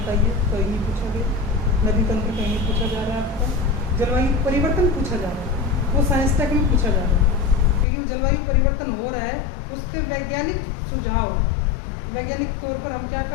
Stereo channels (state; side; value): drops out; right; at 7.9 s